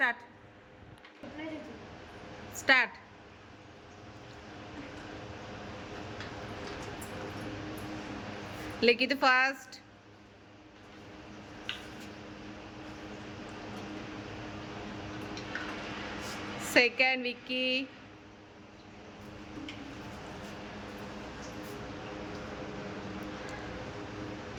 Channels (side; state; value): both; identical; correlation 1.00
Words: start. Likhith first. Second Vicky.